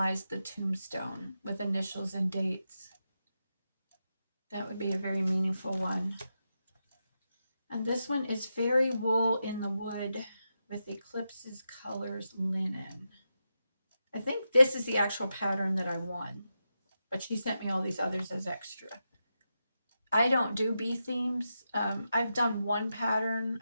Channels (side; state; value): both; inverted; correlation -0.87